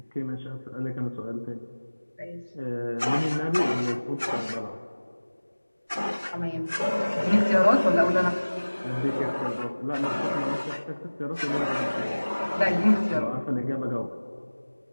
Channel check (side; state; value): both; inverted; correlation -1.00